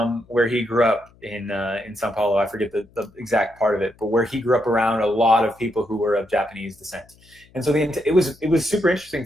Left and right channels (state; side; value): noise; left; hum, 29 dB below the sound